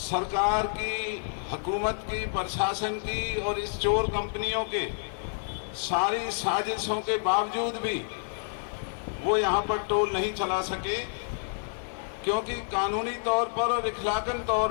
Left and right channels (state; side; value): silent; right; digital silence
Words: सरकार की, हुकूमत की, प्रशासन की और इस चोर कंपनियों के सारी साजिशों के बावजूद भी वो यहाँ पर टोल नहीं चला सके, क्योंकि कानूनी तौर पर और इखलाकन